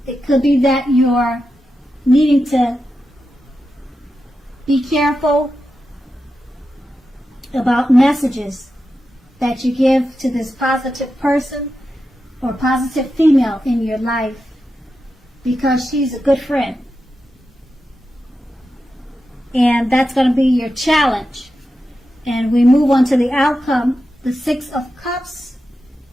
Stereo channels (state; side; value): normal; both; correlation 0.90